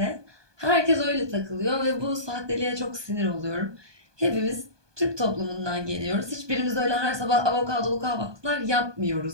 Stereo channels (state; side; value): late; left; 1.2 ms